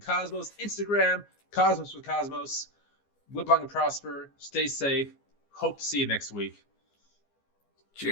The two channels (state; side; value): late; right; 15 ms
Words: Cosmos, Instagram, Cosmos with Cosmos. Live long and prosper. Stay safe. Hope to see you next week.